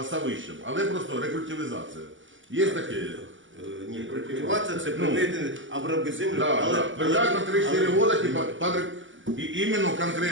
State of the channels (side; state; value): left; late; 0.56 ms